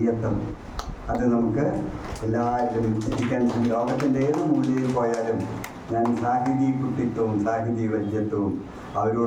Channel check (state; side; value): identical; both; correlation 1.00